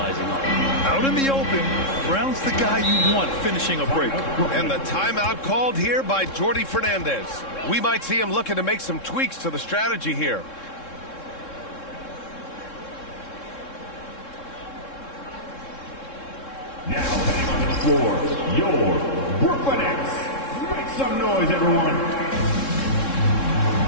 on. Out in the open, Brown's the guy you want finishing a break. And the timeout called here by Jordi Fernandez. We might see him looking to make some tweaks to the strategy here. Now heading onto the floor, your Brooklyn Nets. Make some noise, everyone.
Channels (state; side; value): late; right; 3.7 ms